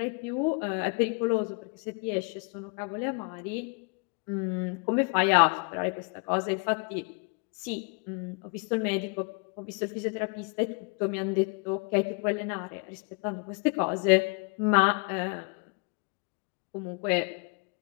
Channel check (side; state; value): right; quieter; 34.0 dB